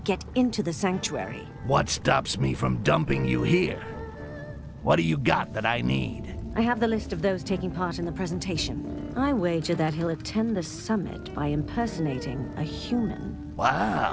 into the sanctuary. What stops me from dumping you here? What do you got that I need? I have the list of those taking part in the presentation. I wager that he'll attend the summit by impersonating a human.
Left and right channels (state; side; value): identical; both; correlation 1.00